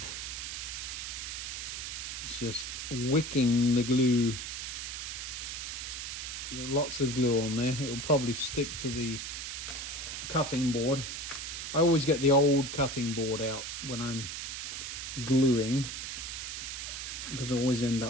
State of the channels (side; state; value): right; noise; hiss, 5 dB below the sound